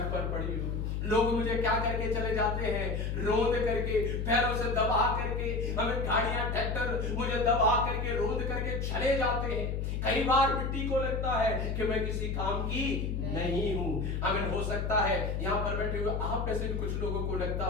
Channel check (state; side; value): noise; left; hum, 1 dB below the sound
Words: पर पड़ी हूं। लोग मुझे क्या करके चले जाते हैं, रोंद करके, पैरों से दबा करके, हमें गाड़ियां ट्रैक्टर मुझे दबा करके, रोंद करके चले जाते हैं। कई बार मिट्टी को लगता है कि मैं किसी काम की नहीं हूं। आमीन। हो सकता है यहां पर बैठे हुए आप में से कुछ लोगों को लगता